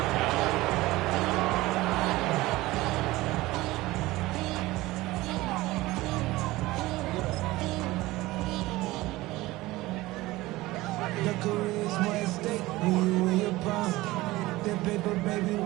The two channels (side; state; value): left; quieter; 18.9 dB